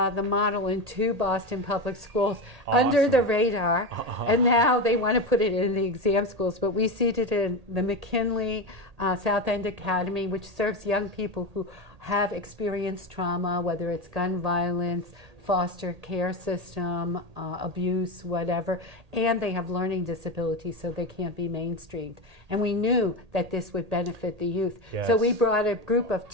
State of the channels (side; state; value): left; late; 1.8 ms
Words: model in 2 Boston public schools under the radar, and now they want to put it in the exam schools. But we seeded in the McKinley South End Academy, which serves young people who have experienced trauma, whether it's gun violence, foster care system, abuse, whatever, and they have learning disabilities, so they can't be mainstreamed. And we knew that this would benefit the youth. Yes. So we brought a group of